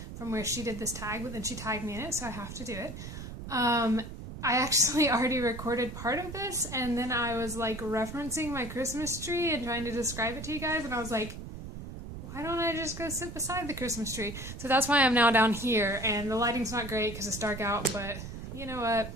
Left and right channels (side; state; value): right; noise; rumble, 10 dB below the sound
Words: from where she did this tag, but then she tagged me in it, so I have to do it. I actually already recorded part of this, and then I was like referencing my Christmas tree and trying to describe it to you guys, and I was like, why don't I just go sit beside the Christmas tree? So that's why I'm now down here, and the lighting's not great because it's dark out, but you know what?